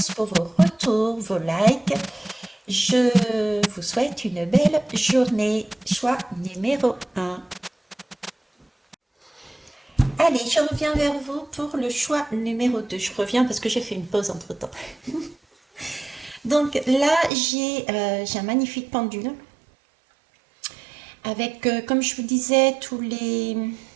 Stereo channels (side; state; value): left; drops out; at 17.3 s